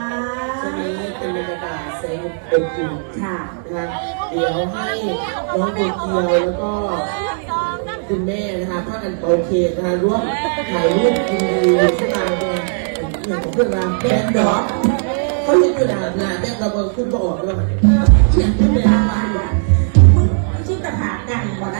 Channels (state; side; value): silent; left; digital silence